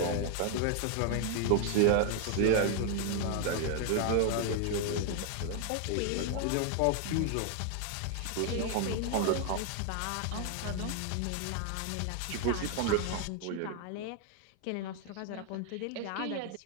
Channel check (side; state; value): both; different; correlation 0.00